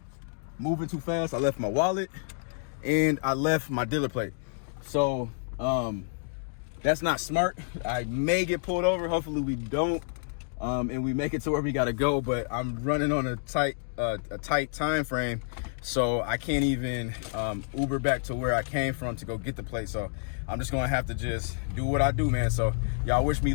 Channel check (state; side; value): silent; right; digital silence